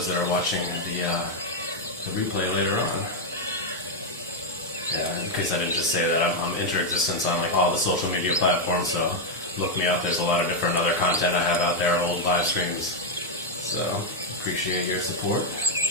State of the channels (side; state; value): both; normal; correlation 0.01